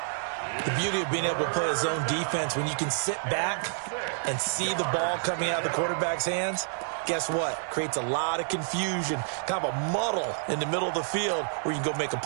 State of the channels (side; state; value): left; silent; digital silence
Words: The beauty of being able to play a zone defense, when you can sit back and see the ball coming out of the quarterback's hands, guess what? Creates a lot of confusion, kind of a muddle in the middle of the field where you can go make a